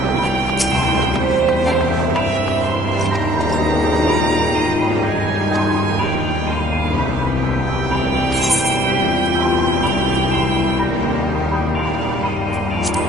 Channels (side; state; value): both; normal; correlation 0.59